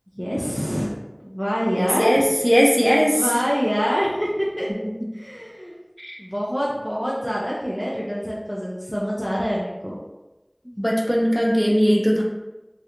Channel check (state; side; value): identical; both; correlation 1.00